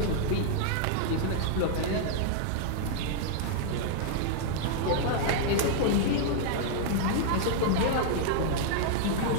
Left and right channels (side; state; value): both; different; correlation -0.01